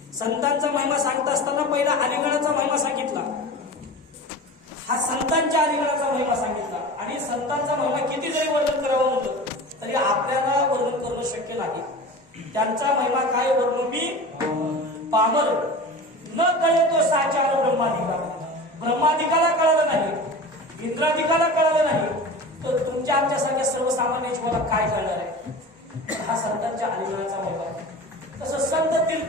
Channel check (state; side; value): normal; both; correlation 0.34